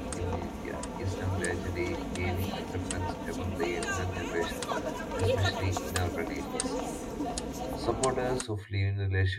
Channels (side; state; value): both; identical; correlation 1.00